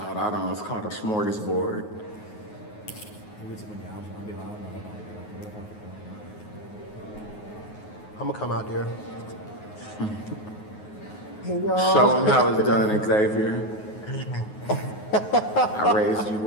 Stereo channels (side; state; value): right; late; 9.4 ms